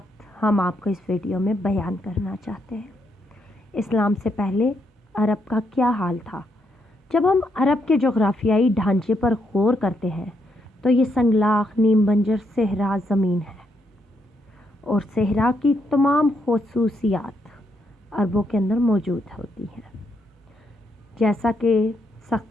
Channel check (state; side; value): normal; both; correlation 0.77